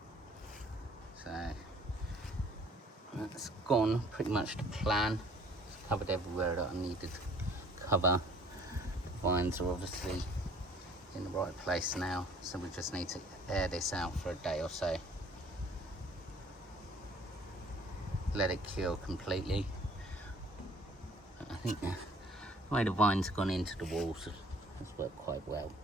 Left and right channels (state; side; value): normal; both; correlation 0.55